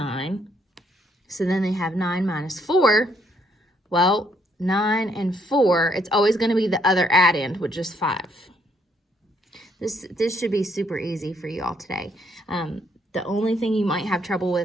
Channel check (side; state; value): both; normal; correlation 0.70